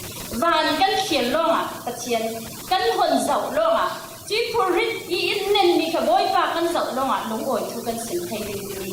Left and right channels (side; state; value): both; identical; correlation 1.00